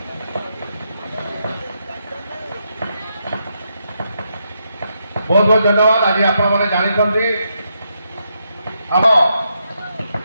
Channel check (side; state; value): both; inverted; correlation -0.81